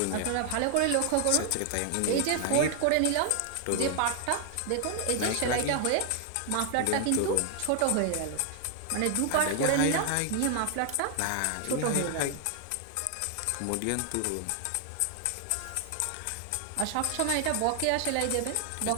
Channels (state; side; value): different; both; correlation 0.00